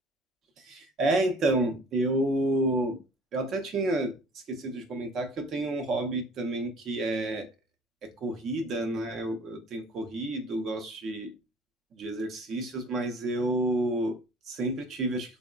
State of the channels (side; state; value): both; normal; correlation 0.49